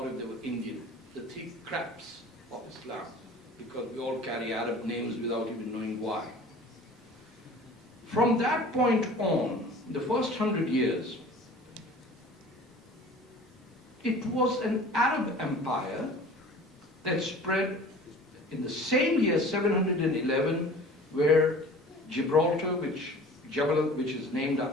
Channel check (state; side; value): normal; both; correlation 0.44